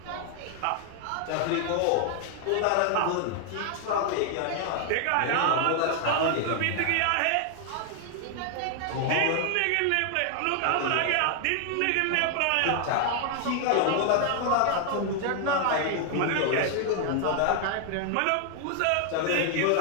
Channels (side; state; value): both; different; correlation 0.00